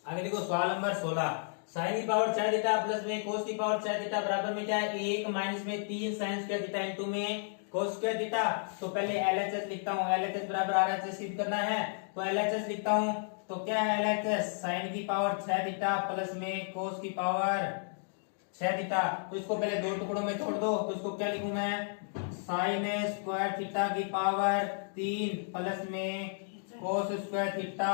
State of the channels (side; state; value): right; silent; digital silence